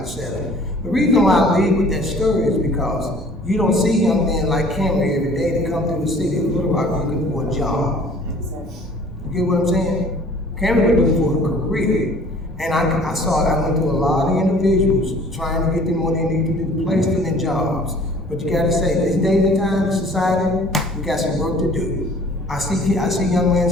The reason why I lead with that story is because you don't see young men like Cameron every day that come through the city of Little Rock looking for a job. You get what I'm saying? Cameron was looking for a career. And I went through a lot of individuals trying to get them what they need to do, place them in jobs. But you gotta say, this day and time in society, we got some work to do. I see young men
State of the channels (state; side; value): normal; both; correlation 0.51